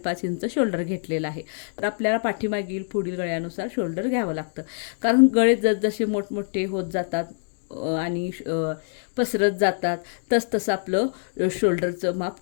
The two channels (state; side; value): silent; right; digital silence